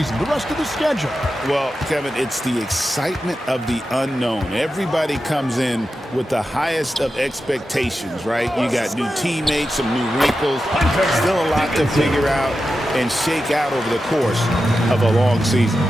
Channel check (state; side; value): normal; both; correlation 0.91